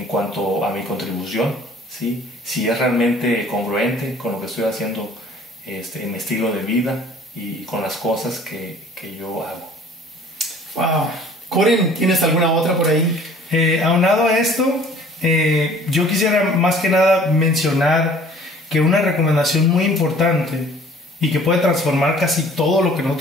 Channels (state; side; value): normal; both; correlation 0.51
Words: cuanto a mi contribución, ¿sí? Si es realmente congruente con lo que estoy haciendo en mi estilo de vida y con las cosas que yo hago. Wow. Coren, ¿tienes alguna otra por ahí? Aunado a esto, yo quisiera más que nada mencionar que una recomendación muy importante y que puede transformar casi todo lo que